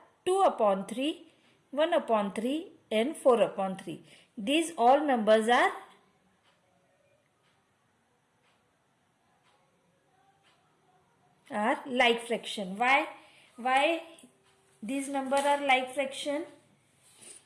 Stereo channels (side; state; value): both; identical; correlation 1.00